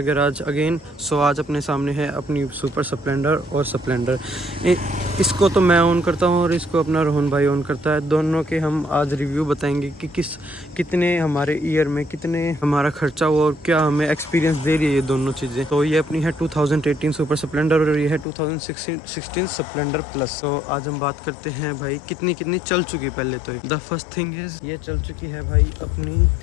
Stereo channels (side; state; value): right; drops out; at 18.2 s